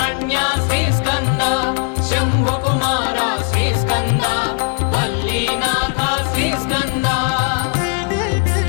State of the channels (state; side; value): quieter; right; 36.5 dB